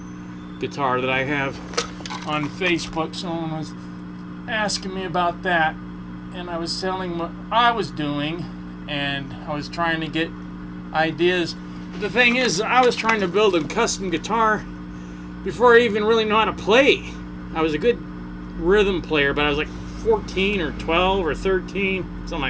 guitar that I have on Facebook. Someone was asking me about that, and I was telling what I was doing, and I was trying to get ideas. But the thing is, I was trying to build a custom guitar before I even really know how to play. I was a good rhythm player, but I was like 14 or 12 or 13, something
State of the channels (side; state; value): both; identical; correlation 1.00